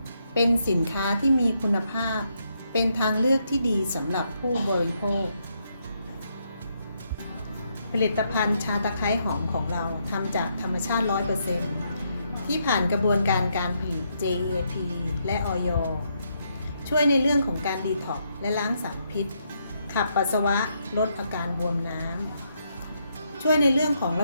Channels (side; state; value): both; inverted; correlation -0.77